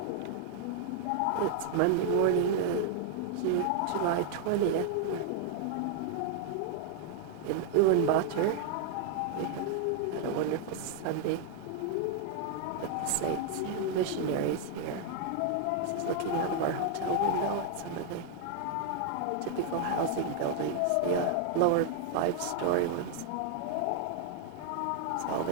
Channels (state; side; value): different; both; correlation 0.00